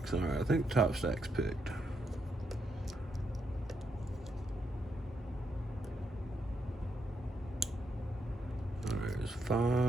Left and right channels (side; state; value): both; normal; correlation 0.81